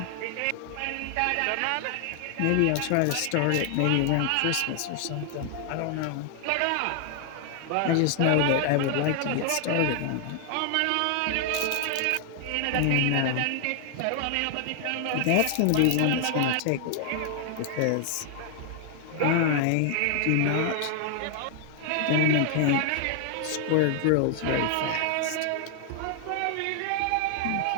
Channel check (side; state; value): both; different; correlation 0.00